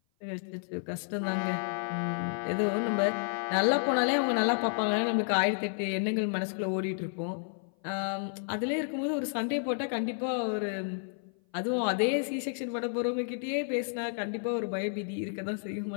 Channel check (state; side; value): silent; right; 55 dB below the other